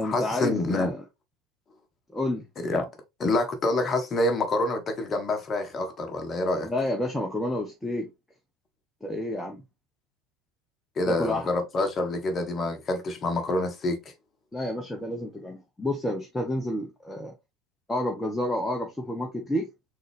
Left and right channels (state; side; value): normal; both; correlation 0.69